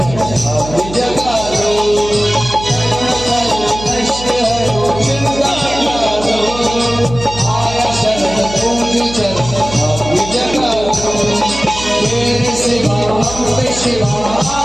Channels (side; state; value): right; noise; hum, 11 dB below the sound